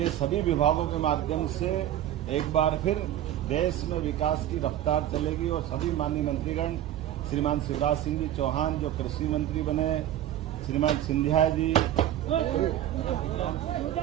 सभी विभागों के माध्यम से एक बार फिर देश में विकास की रफ्तार चलेगी और सभी माननीय मंत्रीगण श्रीमान शिवराज सिंह जी चौहान जो कृषि मंत्री बने, श्रीमान सिंधिया जी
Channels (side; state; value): left; quieter; 12.0 dB